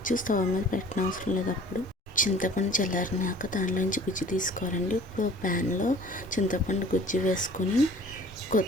స్టవ్ మీద పెట్టనవసరం లేదు. అప్పుడు చింతపండు చల్లారినాక దానిలోంచి గుజ్జు తీసుకోవాలండి. ఇప్పుడు ప్యాన్లో చింతపండు గుజ్జు వేసుకొని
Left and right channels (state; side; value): normal; both; correlation 0.49